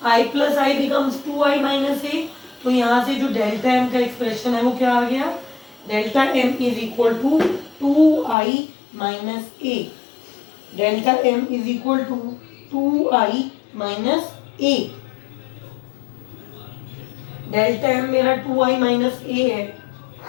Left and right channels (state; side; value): drops out; right; at 8.3 s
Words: I plus I becomes 2I minus A, तो यहाँ से जो डेल्टा M का एक्सप्रेशन है वो क्या आ गया, delta M is equal to 2I minus A, delta M is equal to 2I minus A. Delta M मेरा 2I माइनस ए है,